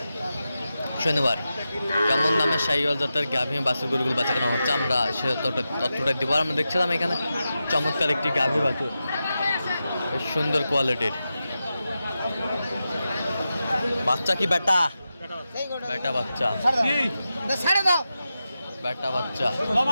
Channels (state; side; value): inverted; both; correlation -0.91